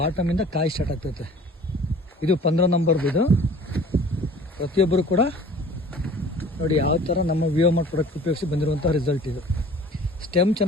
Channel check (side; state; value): both; normal; correlation 0.47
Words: ಕಾಯಿ ಸ್ಟಾರ್ಟ್ ಆಗ್ತೈತೆ. ಇದು 15 ನಂಬರ್ದು. ಇದು ಪ್ರತಿಯೊಬ್ಬರು ಕೂಡ ನೋಡಿ ಯಾವ ಥರ ನಮ್ಮ ವಿಯೋಮಾರ್ಟ್ ಪ್ರಾಡಕ್ಟ್ ಉಪಯೋಗಿಸಿ ಬಂದಿರುವಂಥ ರಿಸಲ್ಟ್ ಇದು. ಸ್ಟೆಮ್